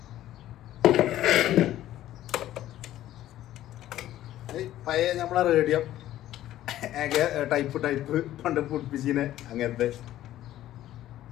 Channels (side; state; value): right; quieter; 13.5 dB